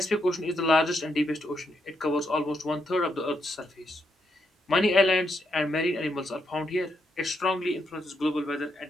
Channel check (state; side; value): normal; both; correlation 0.79